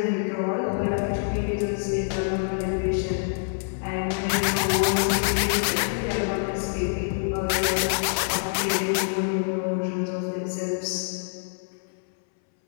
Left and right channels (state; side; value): silent; right; 61 dB below the other